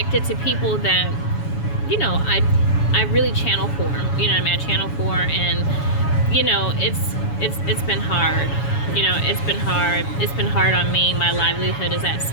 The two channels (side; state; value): right; late; 7.1 ms